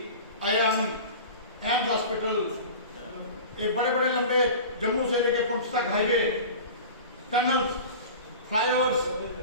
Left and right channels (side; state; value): both; inverted; correlation -0.36